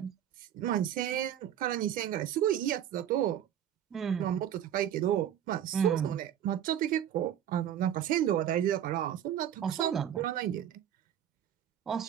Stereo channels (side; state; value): left; quieter; 10.3 dB